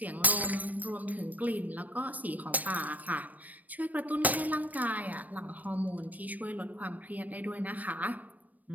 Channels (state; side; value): late; left; 0.079 ms